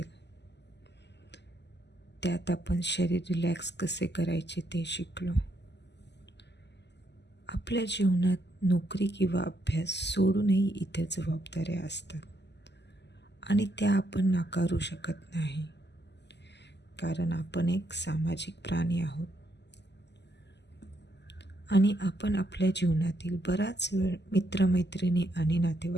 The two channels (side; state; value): right; late; 0.50 ms